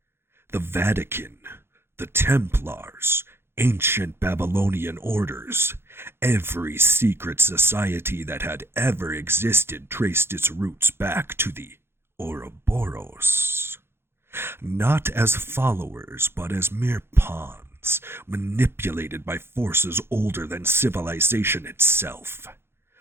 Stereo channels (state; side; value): late; left; 0.11 ms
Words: The Vatican, the Templars, ancient Babylonian orders, every secret society that had ever existed traced its roots back to the Ouroboros. Not as followers, but as mere pawns, manipulated by forces older than civilization itself.